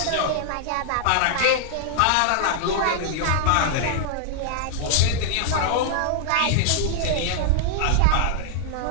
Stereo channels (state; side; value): different; both; correlation -0.01